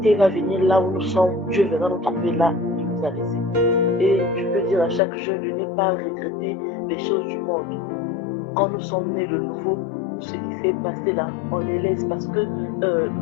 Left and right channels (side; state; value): right; drops out; at 5.0 s